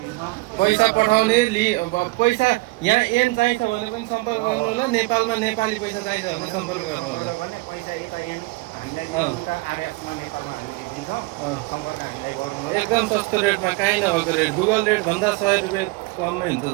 पैसा पठाउने पैसा यहाँ एन चाहिन्छ भने पनि सम्पर्क गर्नु होला। नेपालमा नेपाली पैसा चाहिन्छ भने सम्पर्क गर्नु होला। पैसा यता हामीलाई उता आरएसमा नेपालमा हामीले दिन्छौँ, सम्पर्क हामीलाई गर्नु होला। एकदम सस्तो रेटमा, काहीँ नभएको रेट, गुगल रेट भन्दा 100 रुपियाँ कममै हुन्छ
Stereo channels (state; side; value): quieter; left; 23.8 dB